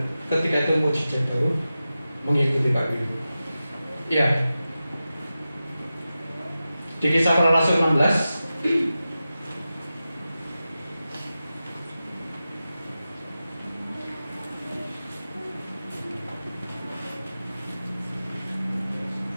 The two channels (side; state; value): both; inverted; correlation -0.93